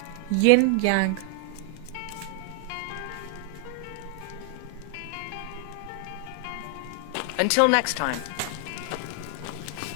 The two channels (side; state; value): both; different; correlation 0.00